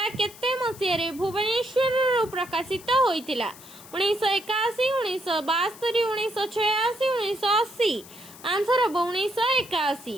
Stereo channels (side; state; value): left; noise; hiss, 19 dB below the sound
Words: केते मसीह रे भुवनेश्वर प्रकाशित होइतिला? 1981, 1972, 1986, 1980। Answer hub